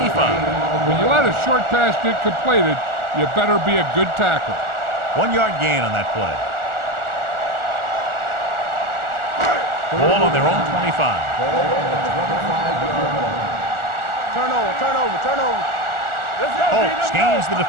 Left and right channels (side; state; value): left; late; 1.4 ms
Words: When you let a short pass get completed, you better be a good tackle. 1-yard gain on that play. Ball on their own 25. Turnover. Let's go, Holt scans the